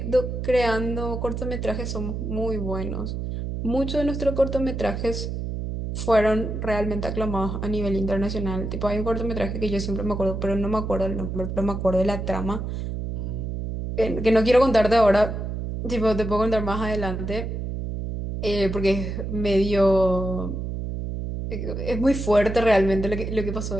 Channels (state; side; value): noise; right; hum, 4 dB below the sound